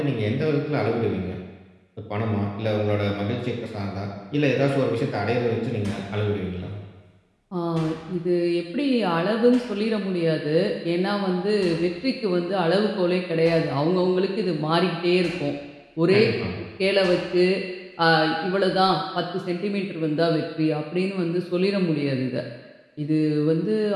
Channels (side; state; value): both; identical; correlation 1.00